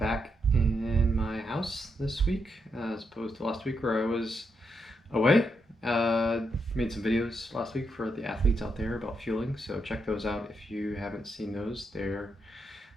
in my house this week as opposed to last week where I was away. Made some videos last week for the athletes out there about fueling, so check those out if you haven't seen those. They're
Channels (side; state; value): both; normal; correlation 0.81